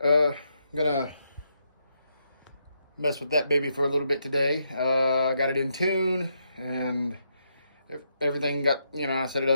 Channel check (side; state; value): both; inverted; correlation -0.80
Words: I'm gonna mess with that baby for a little bit today. I got it in tune and everything got, I set it